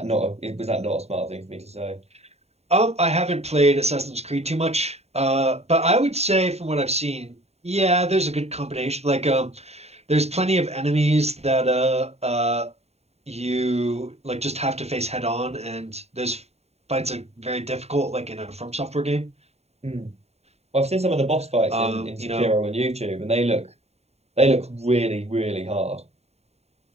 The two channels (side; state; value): left; late; 0.31 ms